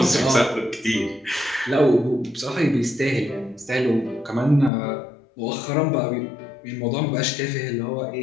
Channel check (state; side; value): drops out; right; at 4.7 s